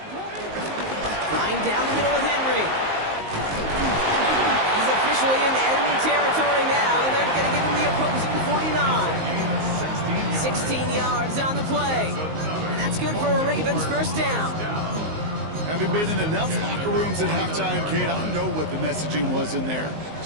Flying down the middle with Henry. He's officially in enemy territory now, and they're going to give him the opposing 49. 16 yards on the play. And that's good for a Ravens first down. Having been in enough locker rooms at halftime, Kate, I know what the messaging was in there.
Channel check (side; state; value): left; late; 19 ms